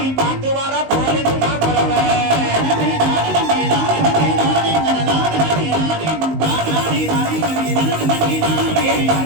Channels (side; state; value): left; late; 19 ms